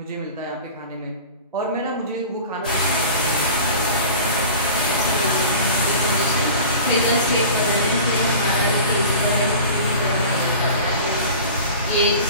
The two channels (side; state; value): both; inverted; correlation -0.38